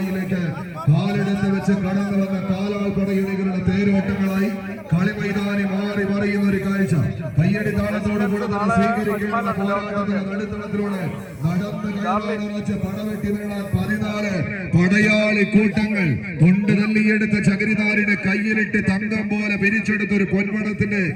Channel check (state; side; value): identical; both; correlation 1.00